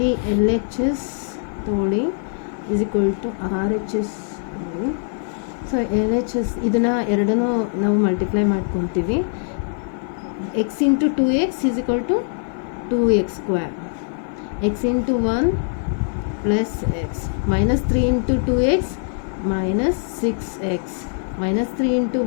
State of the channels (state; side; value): silent; right; 55 dB below the other